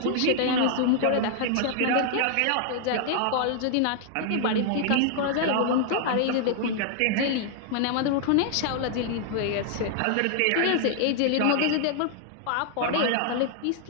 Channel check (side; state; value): both; different; correlation 0.00